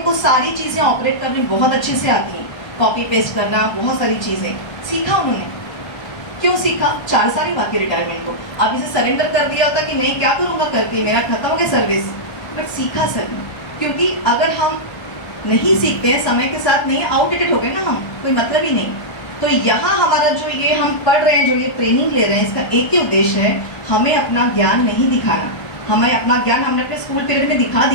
सारी चीज़ें ऑपरेट करनी बहुत अच्छे से आती हैं, कॉपी पेस्ट करना, बहुत सारी चीज़ें सीखा उन्होंने। क्यों सीखा? 4 साल ही बाकी रिटायरमेंट को। अब इसे सरेंडर कर दिया होता कि नहीं क्या करूँगा करके, मेरा खत्म हो गया सर्विस, बट सीखा सर ने। क्योंकि अगर हम नहीं सीखते हैं, समय के साथ नहीं, आउटडेटेड हो गए ना हम, कोई मतलब ही नहीं। तो यहाँ हमारा जो ये हम पढ़ रहे हैं, जो ये ट्रेनिंग ले रहे हैं, इसका एक ही उद्देश्य है, हमें अपना ज्ञान नहीं दिखाना। हमें अपना ज्ञान हमने अपने स्कूल पीरियड में दिखा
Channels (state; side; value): late; right; 1.3 ms